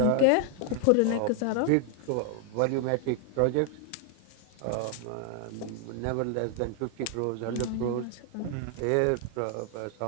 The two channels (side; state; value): both; different; correlation 0.00